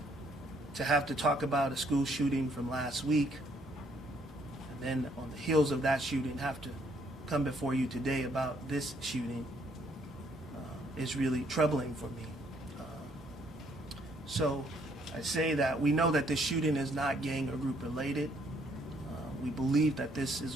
To have to talk about a school shooting from last week, and then on the heels of that shooting have to come before you today about this shooting is really troubling for me. So I say that we know that this shooting is not gang or group related. We believe that this is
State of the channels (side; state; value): both; normal; correlation 0.68